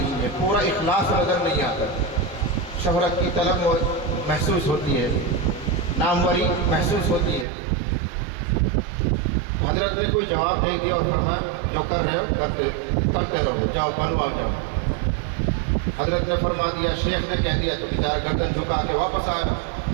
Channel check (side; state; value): left; drops out; at 7.5 s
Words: ہے، پورا اخلاص نظر نہیں آتا۔ شہرت کی طلب محسوس ہوتی ہے، ناموری محسوس ہوتی ہے۔ حضرت نے کوئی جواب نہیں دیا اور فرمایا، جو کر رہے ہو کرتے رہو، جاؤ بنواؤ جاؤ۔ حضرت نے فرما دیا، شیخ نے کہہ دیا، تو بیچارہ گردن جھکا کے واپس آیا،